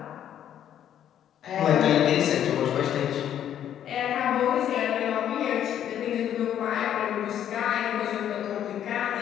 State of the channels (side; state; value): right; quieter; 10.3 dB